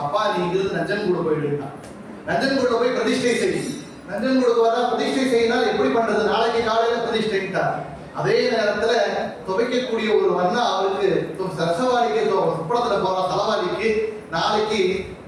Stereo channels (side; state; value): both; identical; correlation 1.00